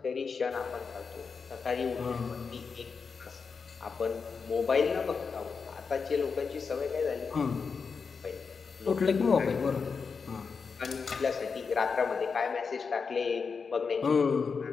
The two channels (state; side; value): quieter; right; 5.3 dB